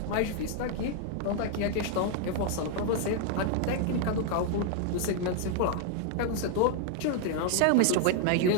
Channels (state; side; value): different; both; correlation 0.00